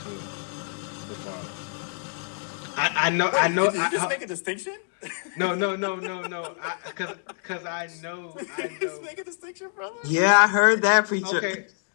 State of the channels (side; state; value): right; silent; digital silence